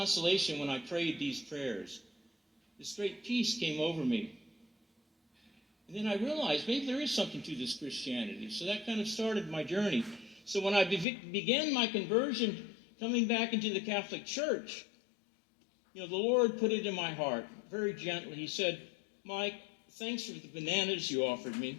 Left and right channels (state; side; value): drops out; right; at 11.1 s